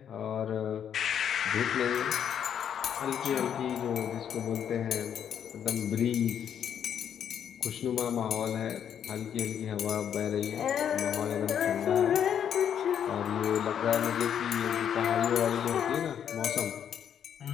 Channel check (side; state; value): right; quieter; 8.8 dB